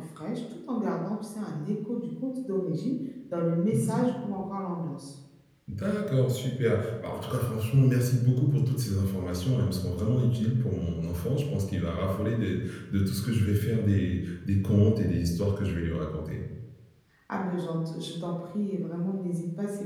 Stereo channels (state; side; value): identical; both; correlation 1.00